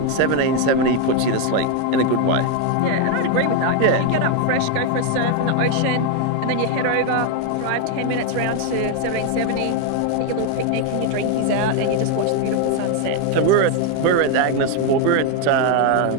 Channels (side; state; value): both; different; correlation 0.01